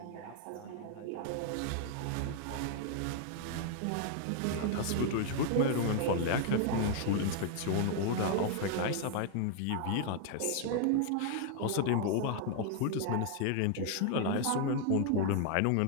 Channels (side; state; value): both; different; correlation 0.00